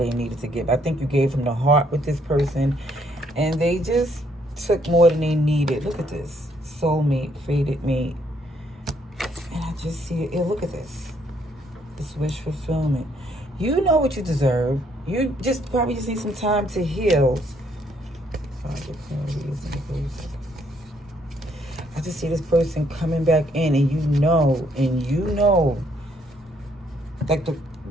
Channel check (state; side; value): normal; both; correlation 0.69